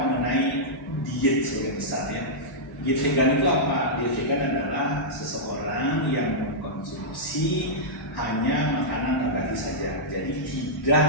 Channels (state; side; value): normal; both; correlation -0.11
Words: diet sebagai besar ya. Diet vegan itu apa? Diet vegan adalah seseorang yang mengkonsumsi hanya makanan nabati saja. Jadi tidak